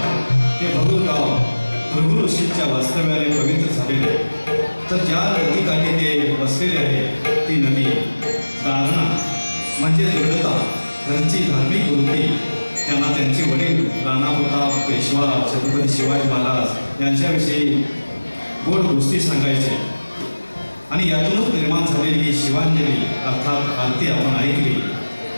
ते भगूर गाव भृगु ऋषींच्या वास्तव्याने पवित्र झालेले, तर ज्या नदीकाठी ते बसलेले आहे ती नदी दारणा म्हणजे दृढता, घरची धार्मिक वृत्ती त्यांना त्यांचे वडील राणाप्रताप पेशवा छत्रपती शिवाजी महाराज यांच्याविषयी गोड गोष्टी सांगायचे. आणि यातूनच निर्माण झालेली ही शिवांजली अर्थात आरती आपण ऐकली.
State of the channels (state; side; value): inverted; both; correlation -1.00